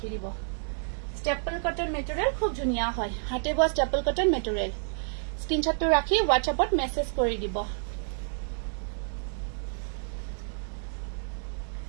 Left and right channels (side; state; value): left; silent; digital silence